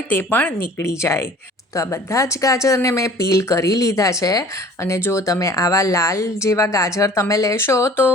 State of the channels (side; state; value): both; normal; correlation 0.48